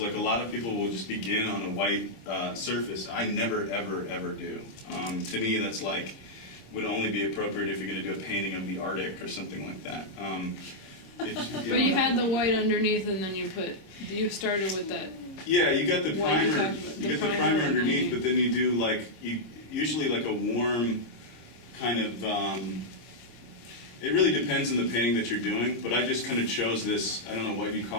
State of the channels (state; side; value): late; right; 26 ms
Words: a lot of people will just begin on a white surface. I never, ever, ever do. To me, that's like, would only be appropriate if you're going to do a painting of the Arctic or something like that. But you had the white underneath, and then you started with that. Yeah, you got the What you primer. talked about, You the get the primer primer and then underneath, you- but then you do usually like a warm kind of. It really depends on the painting that you're doing, but I just kind of chose this. I don't know what you